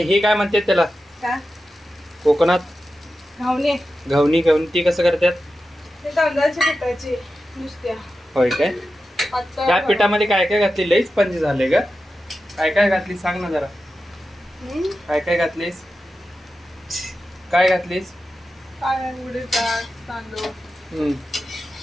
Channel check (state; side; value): normal; both; correlation 0.91